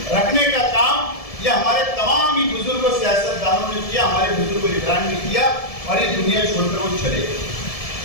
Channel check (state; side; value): late; right; 1.7 ms